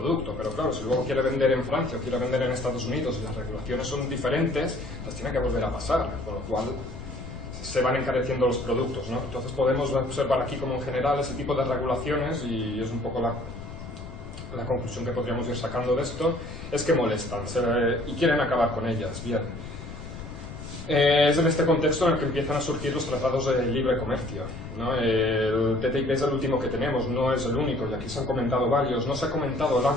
Pero claro, si luego quiere vender en Francia o quiere vender en Estados Unidos y las regulaciones son diferentes, las tiene que volver a pasar, con lo cual se van encareciendo los productos, ¿no? Entonces podemos observar aquí como en general ese tipo de regulaciones, y es un poco la conclusión que podríamos ir sacando de esto, es que molestan y quieren acabar con ellas. Bien. Es en este contexto en el que empiezan a surgir los tratados de libre comercio, ¿no? El TTIP es el último que tenemos, no es el único, y aquí se han comentado varios. No se ha comentado el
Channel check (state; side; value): noise; left; rumble, 11 dB below the sound